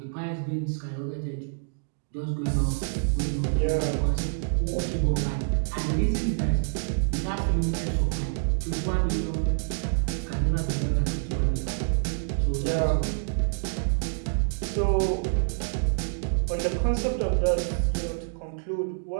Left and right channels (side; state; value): left; silent; digital silence